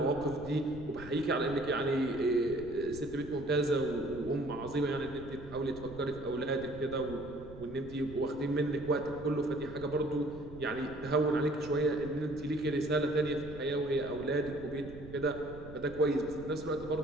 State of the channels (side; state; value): right; noise; rumble, 15 dB below the sound